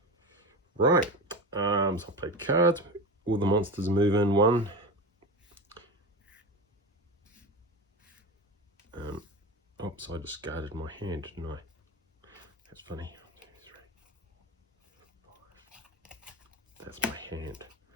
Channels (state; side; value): normal; both; correlation 0.24